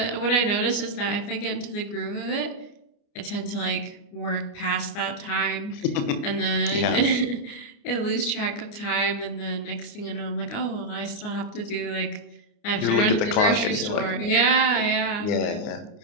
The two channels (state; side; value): late; right; 29 ms